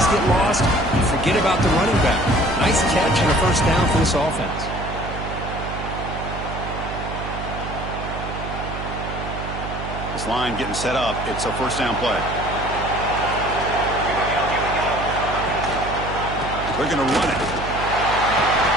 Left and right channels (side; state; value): right; noise; hum, 7 dB below the sound